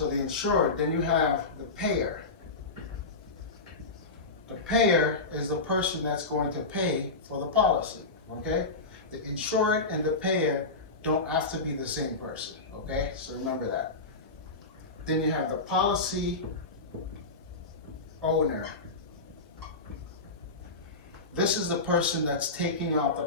the insured, then you have the payer. The payer is the person that's going to pay for the policy, okay? The insured and the payer don't have to be the same person, okay? So remember that. Then you have the policy owner. This is the person that's taking out the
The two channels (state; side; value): quieter; right; 3.5 dB